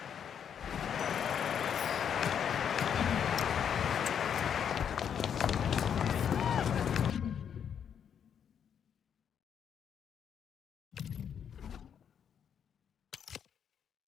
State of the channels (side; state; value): right; quieter; 8.1 dB